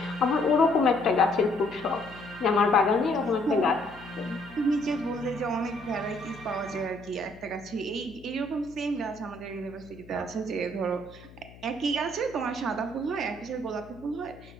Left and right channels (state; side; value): noise; left; hum, 20 dB below the sound